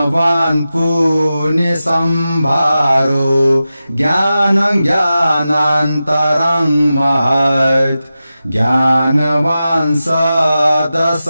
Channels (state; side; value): inverted; both; correlation -0.93